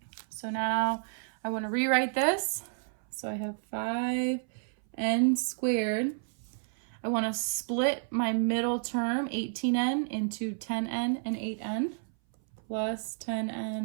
So now I want to rewrite this. So I have 5n squared. I want to split my middle term, 18n, into 10n and 8n, plus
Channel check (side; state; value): left; silent; 57 dB below the other